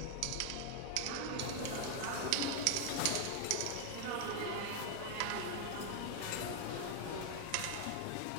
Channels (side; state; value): both; different; correlation 0.00